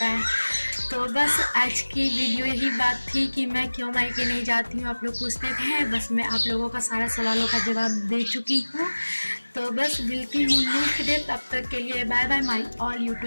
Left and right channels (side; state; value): both; inverted; correlation -1.00